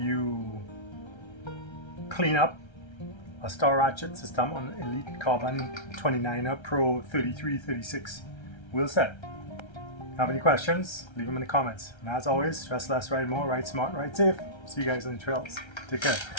clean up a star ratchet system on Elite Carbon 29Pro36 wheel set. Have any questions? Leave them in the comments. And as always, stress less, ride more, ride smart, ride safe. See you guys on the trails. Take care.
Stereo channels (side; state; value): right; late; 1.3 ms